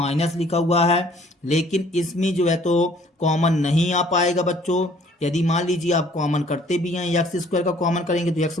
लिखा हुआ है, लेकिन इसमें जो है तो कॉमन नहीं आ पाएगा बच्चों। यदि मान लीजिए आप कॉमन करते भी हैं, x² का कॉमन करेंगे तो x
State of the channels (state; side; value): normal; both; correlation 0.58